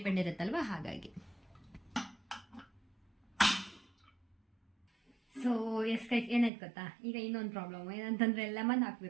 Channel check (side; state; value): left; drops out; at 6.5 s